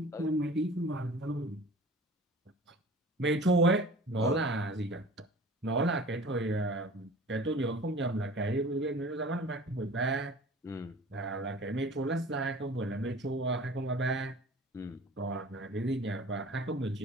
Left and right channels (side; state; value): both; normal; correlation 0.43